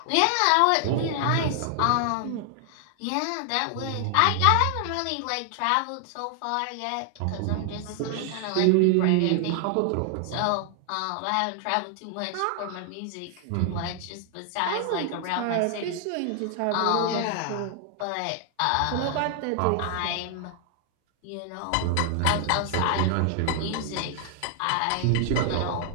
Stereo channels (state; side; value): different; both; correlation 0.00